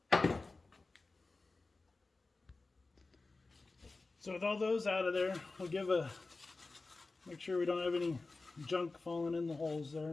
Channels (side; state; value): right; quieter; 3.6 dB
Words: So with all those out of there, we'll make sure we don't have any junk falling in the holes